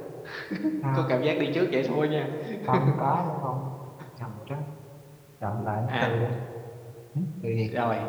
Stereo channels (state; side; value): identical; both; correlation 1.00